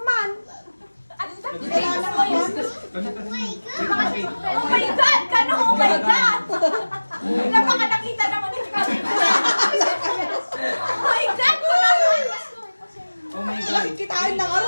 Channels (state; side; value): inverted; both; correlation -1.00